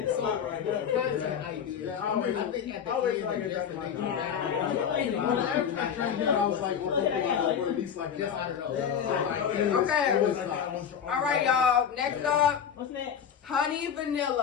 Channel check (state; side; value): quieter; right; 8.0 dB